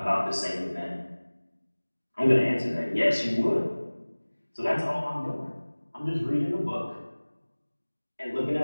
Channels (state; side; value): inverted; both; correlation -1.00